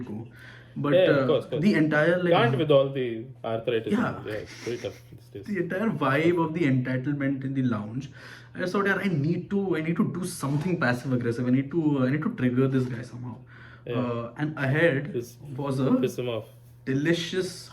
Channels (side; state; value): both; identical; correlation 1.00